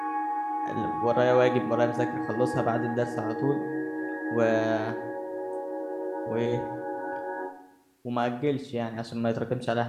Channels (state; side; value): identical; both; correlation 1.00